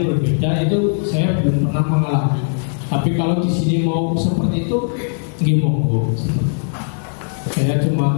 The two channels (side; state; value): right; silent; 67 dB below the other